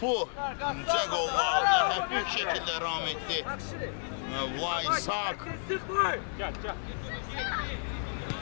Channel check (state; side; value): silent; right; 57 dB below the other